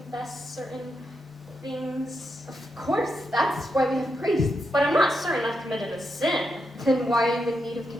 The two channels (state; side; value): normal; both; correlation 0.84